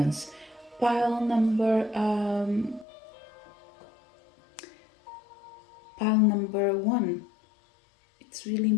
Pile number pile number one, it's really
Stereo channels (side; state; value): right; drops out; at 2.9 s